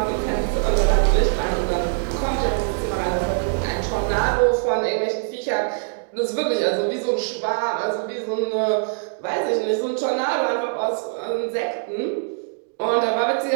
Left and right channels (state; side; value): silent; left; digital silence